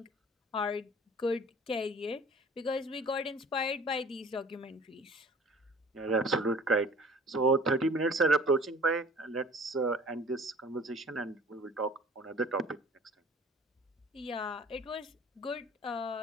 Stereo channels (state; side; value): normal; both; correlation 0.48